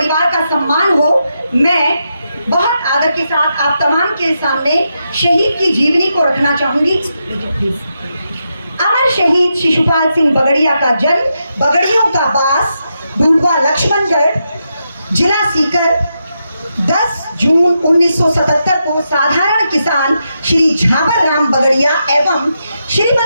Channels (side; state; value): both; inverted; correlation -0.85